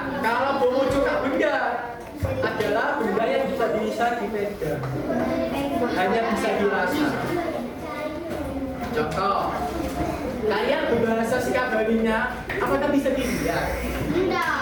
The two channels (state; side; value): identical; both; correlation 1.00